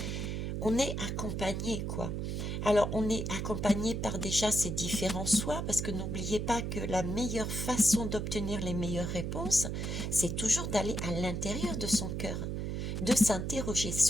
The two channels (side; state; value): right; noise; hum, 2 dB below the sound